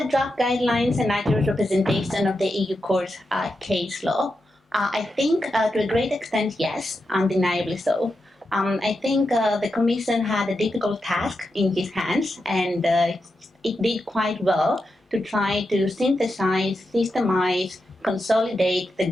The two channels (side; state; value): both; normal; correlation 0.88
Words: draft guidelines an accurate representation of the EU court's case law? I think to a great extent, yes, undeniably so. I think the Commission had a difficult task in its hands, and it did quite well to try to synthesize, systemize, consolidate the